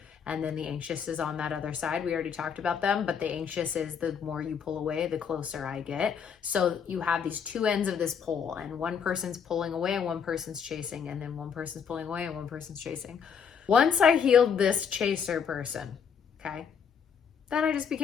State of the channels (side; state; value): right; quieter; 7.0 dB